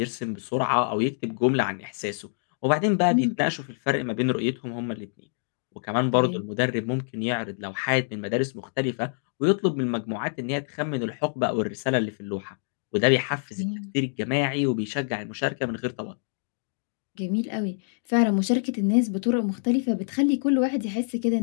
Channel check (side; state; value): right; silent; digital silence